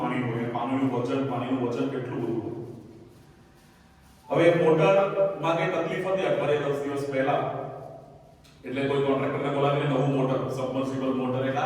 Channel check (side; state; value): both; identical; correlation 1.00